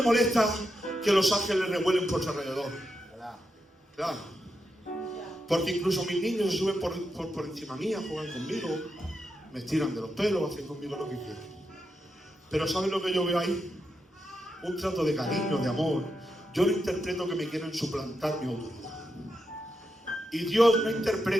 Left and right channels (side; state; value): both; normal; correlation 0.85